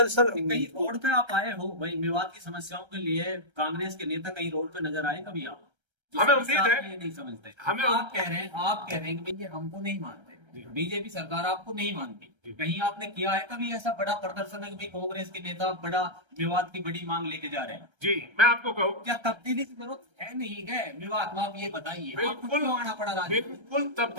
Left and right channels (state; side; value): late; left; 1.3 ms